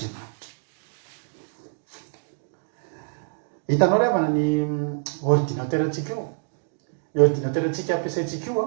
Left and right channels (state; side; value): silent; left; digital silence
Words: Hitanao ry havana ny ordinateur antsika io. Ny ordinateur antsika ampiasaintsika